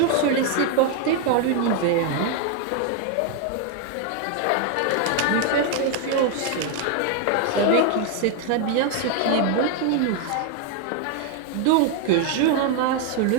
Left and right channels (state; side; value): different; both; correlation 0.01